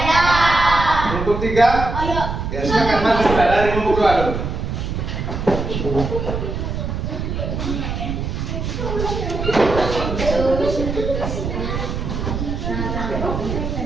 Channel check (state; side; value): noise; right; rumble, 3 dB below the sound